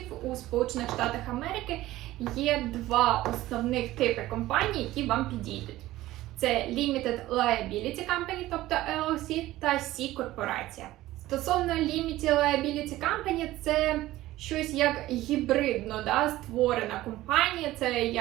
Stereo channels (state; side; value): quieter; left; 16.2 dB